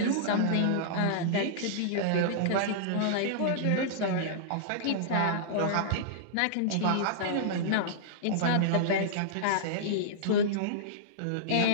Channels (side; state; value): both; different; correlation -0.02